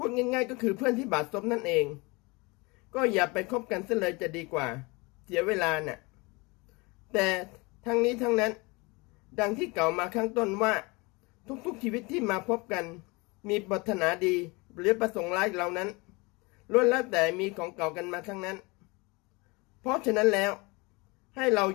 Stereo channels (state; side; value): quieter; right; 26.3 dB